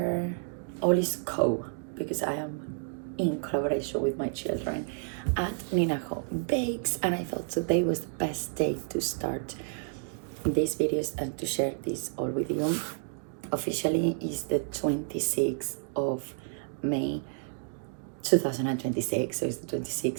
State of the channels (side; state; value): left; silent; digital silence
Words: all is co because I am in collaboration with my children at Ninaho Bakes, and I thought today was the best day to start these videos and to share this all with you. Officially is the 26th of May 2026, so it's the